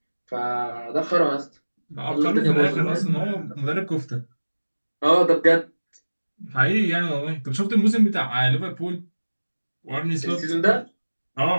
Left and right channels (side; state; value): both; inverted; correlation -1.00